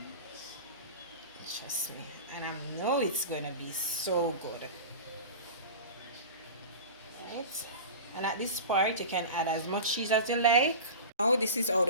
Trust me, and I know it's gonna be so good. Right, and at this part you can add as much cheese as you like. Now this is how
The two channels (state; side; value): inverted; both; correlation -0.32